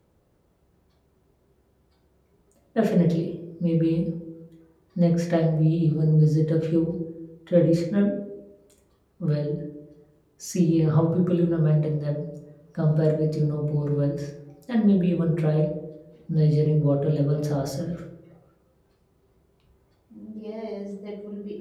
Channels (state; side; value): identical; both; correlation 1.00